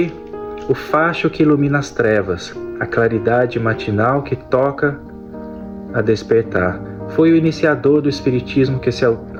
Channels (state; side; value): identical; both; correlation 1.00